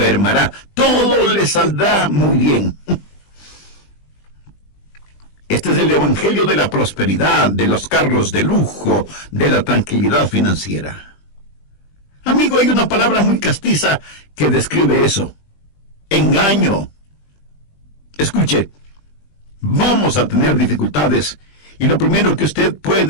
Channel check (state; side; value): late; right; 20 ms